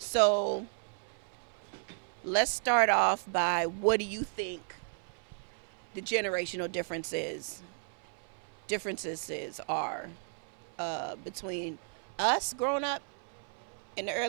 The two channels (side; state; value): left; silent; 55 dB below the other